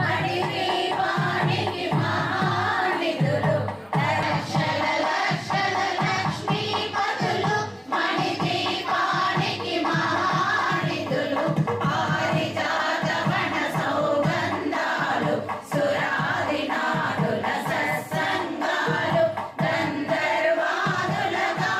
దీపానికి మహానిధులు. లక్షల లక్షల లక్ష్మీపతులు మణి దీపానికి మహానిధులు. పారిజాత వన సౌగంధాలు సురాదినాదుల సత్సంగాలు గంధర్వాదుల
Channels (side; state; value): both; identical; correlation 1.00